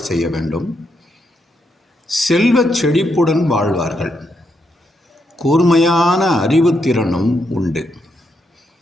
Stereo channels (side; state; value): both; normal; correlation 0.80